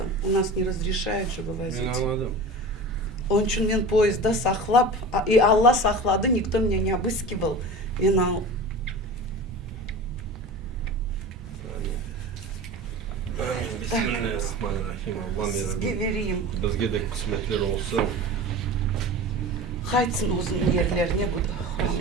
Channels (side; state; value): both; normal; correlation 0.33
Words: У нас не разрешают, чтобы возить. Мен anladım. Onun için мен поезда сақлап, и Алла сақлады, никто меня не обыскивал. Мен ал. Bismillahirrahmanirrahim. Allah'ım Сізге yarabbim. верейім. Bizge de kısmetler olsun. Қайтсын өзінің ерлеріне бұл